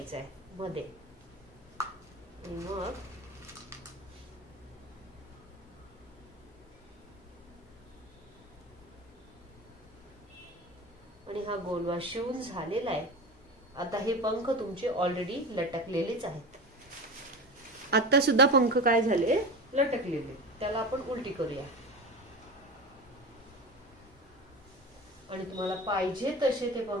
आहे मध्ये. मग आणि हा गोलवा शिवून झालेला आहे. आता हे पंख तुमचे ऑलरेडी लटकलेलेच आहेत. आता सुद्धा पंख काय झाले? लटकलेले. त्याला आपण उलटी करूया. आणि तुम्हाला पाहिजे तसे ते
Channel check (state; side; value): normal; both; correlation 0.28